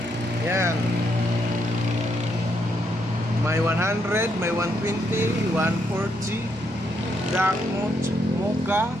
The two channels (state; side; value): normal; both; correlation 0.77